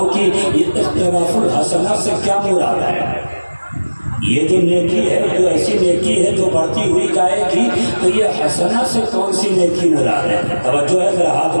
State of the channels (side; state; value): both; inverted; correlation -1.00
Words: کہ یہ اختلاف الحسنہ سے کیا مراد ہے۔ یہ جو نیکی ہے، جو ایسی نیکی ہے جو بڑھتی ہوئی جائے گی، تو یہ حسنہ سے کون سی نیکی مراد ہے؟ توجہ ہے، ذرا ہاتھ